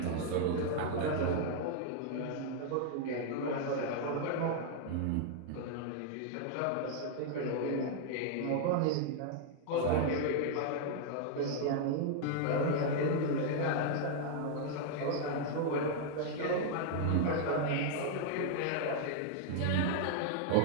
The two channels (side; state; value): both; different; correlation 0.00